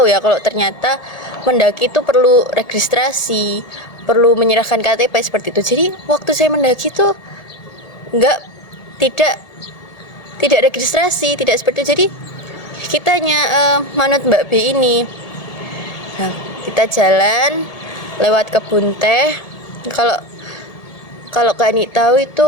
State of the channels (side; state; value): right; late; 1.7 ms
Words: ya kalau ternyata mendaki itu perlu registrasi, perlu menyerahkan KTP seperti itu. Jadi waktu saya mendaki itu tidak registrasi, tidak seperti itu. Jadi kita hanya manut Mbak B ini. Nah, kita jalan lewat kebun teh. Kalau kalau Kak Ani tahu